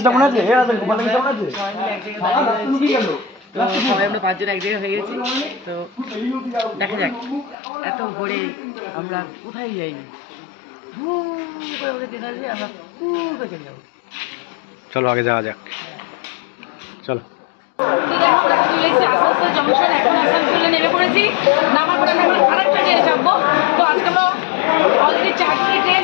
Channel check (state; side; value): drops out; right; at 7.6 s